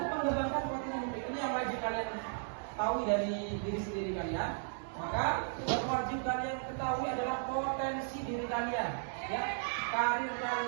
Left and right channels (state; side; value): silent; left; digital silence